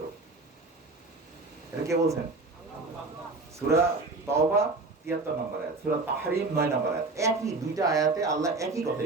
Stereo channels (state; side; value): quieter; left; 3.5 dB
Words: এটা কে বলছেন? সূরা তাওবা ৭৩ নম্বর আয়াত, সূরা তাহরিম ৯ নম্বর আয়াত। একই দুইটা আয়াতে আল্লাহ একই